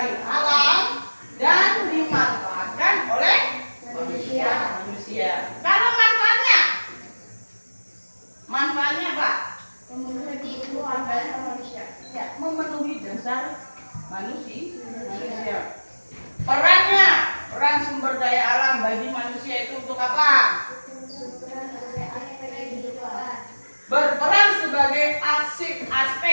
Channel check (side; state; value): both; inverted; correlation -1.00